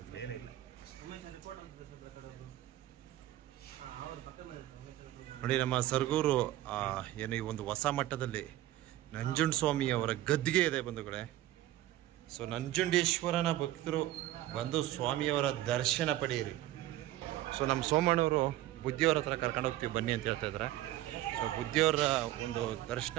ಮೇಲೆ ಇಲ್ಲ ನೋಡಿ. ನಮ್ಮ ಸರಗೂರು ಏನು ಈ ಒಂದು ಹೊಸ ಮಟ್ಟದಲ್ಲಿ ನಂಜುಂಡಸ್ವಾಮಿ ಅವರ ಗದ್ದಿಗೆ ಇದೆ ಬಂಧುಗಳೇ. ಸೊ ನಂಜುಂಡೇಶ್ವರನ ಭಕ್ತರು ಬಂದು ಸ್ವಾಮಿಯವರ ದರ್ಶನ ಪಡೆಯಿರಿ. ಸೊ ನಮ್ಮ ಸೋಮಣ್ಣವರು ಬುದ್ಧಿಯವರ ಹತ್ರ ಕರ್ಕೊಂಡು ಹೋಗ್ತೀವಿ ಬನ್ನಿ ಅಂತ ಹೇಳ್ತಾ ಇದ್ದಾರೆ. ಸೊ ಬುದ್ಧಿಯವರ ಒಂದು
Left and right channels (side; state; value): left; quieter; 14.9 dB